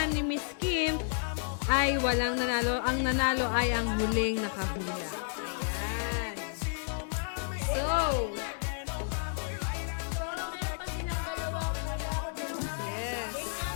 ni Miss Kim, ay walang nanalo. Ang nanalo ay ang huling nakahula. Ayan. Game na, game na. So, meron pa silang dalawang kailangan nila. Yes. Game na?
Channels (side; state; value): right; silent; digital silence